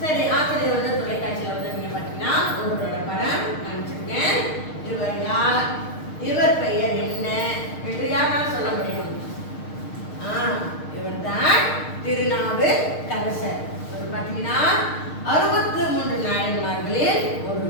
சரி, ஆசிரியர் வந்து தொலைக்காட்சியில் வந்து நீங்க பார்த்தீங்கன்னா ஒருவரோட படம் காமிச்சிருக்கேன். இவர் யார், இவர் பெயர் என்ன என்று யாரால் சொல்ல முடியும்? இவர் தான் திருநாவுக்கரசர். இவர் பார்த்தீங்கன்னா 63 நாயன்மார்களில்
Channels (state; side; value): late; right; 6.5 ms